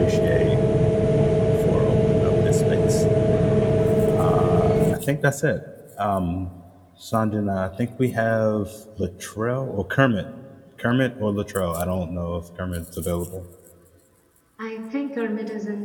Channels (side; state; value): both; identical; correlation 1.00